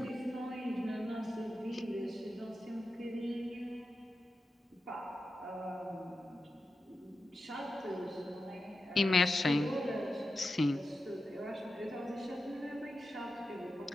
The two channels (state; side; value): normal; both; correlation 0.90